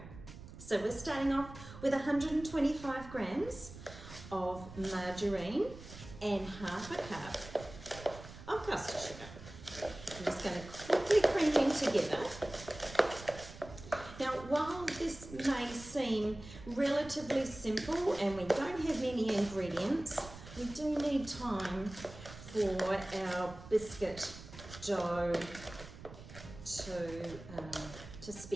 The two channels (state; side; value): noise; right; rumble, 15 dB below the sound